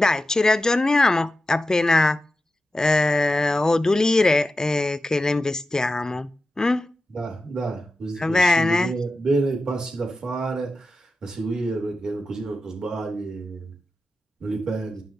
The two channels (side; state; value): both; normal; correlation 0.92